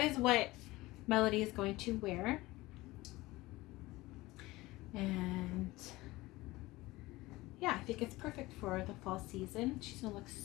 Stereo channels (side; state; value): right; quieter; 19.7 dB